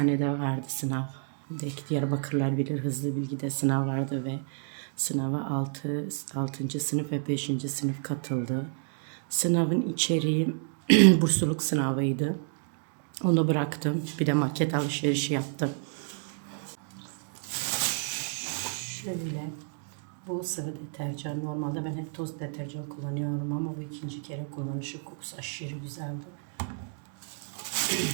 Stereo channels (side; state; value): left; silent; 58 dB below the other